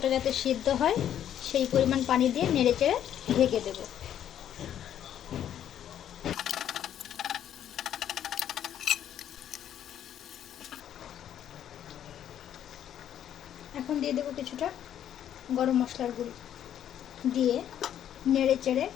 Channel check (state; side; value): quieter; right; 10.3 dB